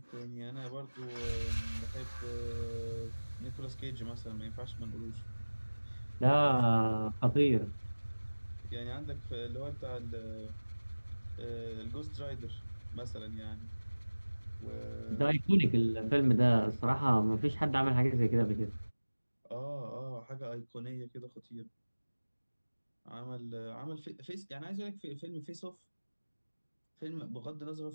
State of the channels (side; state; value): both; inverted; correlation -1.00